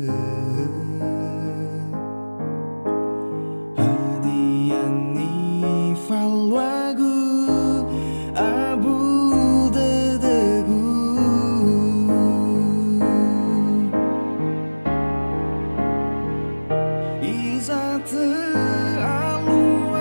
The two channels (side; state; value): both; inverted; correlation -1.00